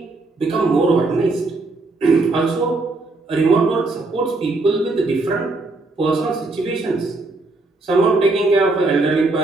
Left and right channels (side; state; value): left; quieter; 3.3 dB